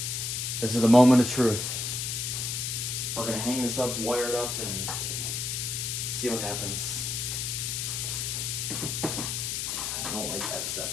This is the moment of truth. We're gonna hang this up, wire it up, and see what happens. I don't like that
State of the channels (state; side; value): noise; left; hiss, 2 dB below the sound